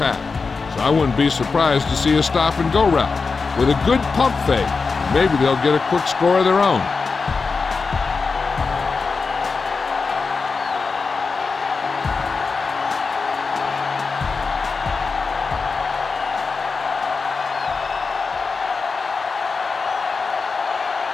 so I wouldn't be surprised to see a stop-and-go route. With a good pump fake, maybe they'll get a quick score of their own.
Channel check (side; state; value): right; quieter; 4.6 dB